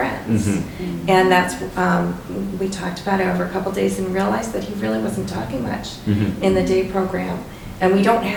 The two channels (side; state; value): both; identical; correlation 1.00